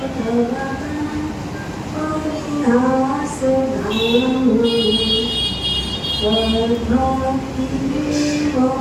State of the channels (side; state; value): both; identical; correlation 1.00